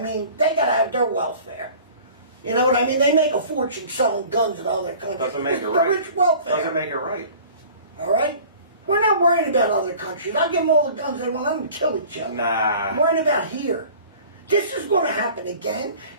They gotta have their welfare. You know what I mean? They make a fortune selling guns to other countries. Doesn't make it's it right. The rich welfare. Doesn't make it right. All right? We're not worrying about other countries. I'll give them all the guns they want. Let them kill each other. Nah. I'm worrying about here. This is going to happen again.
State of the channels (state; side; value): inverted; both; correlation -0.45